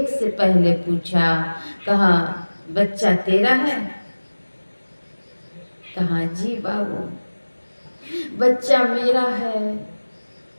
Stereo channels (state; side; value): inverted; both; correlation -1.00